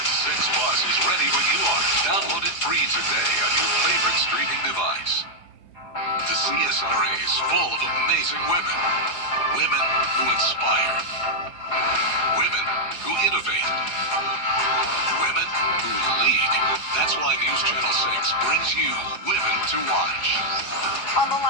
6 Plus is ready when you are. Download it free today on your favorite streaming device. The CSRA is full of amazing women. Women who inspire. Women who innovate. Women who lead. That's why News Channel 6 brings you Women to Watch. On the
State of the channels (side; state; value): right; late; 4.8 ms